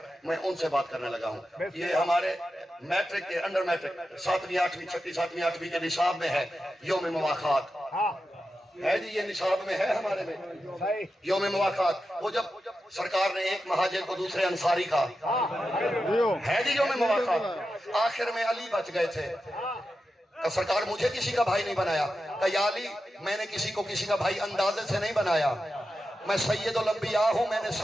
میں ان سے بات کرنے لگا ہوں. یہ ہمارے میٹرک کے انڈر میٹرک 7ویں 8ویں 6ویں 7ویں 8ویں کے نصاب میں ہے یوم مواخات ہے جی. یہ نصاب میں ہے ہمارے میں یوم مواخات. وہ جب سرکار نے ایک مہاجر کو دوسرے انصاری کا ہے جی یوم مواخات, آخر میں علی بچ گئے تھے. کہ سرکار مجھے کسی کا بھائی نہیں بنایا. کہ یا علی میں نے کسی کو کسی کا بھائی اندازے سے نہیں بنایا, میں سید الانبیاء ہوں, میں نے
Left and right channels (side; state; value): both; normal; correlation 0.90